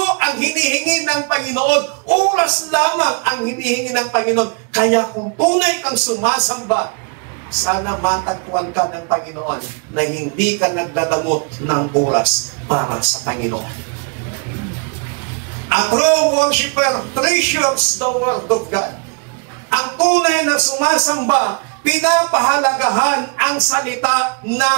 ang hinihingi ng Panginoon. Oras lamang ang hinihingi ng Panginoon. Kaya kung tunay kang sumasamba, sana matagpuan ka ng Panginoon na hindi ka nagdadamot ng oras para sa Panginoon. A true worshiper treasures the Word of God. Ang tunay na sumasamba, pinapahalagahan ang salita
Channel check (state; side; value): quieter; left; 35.7 dB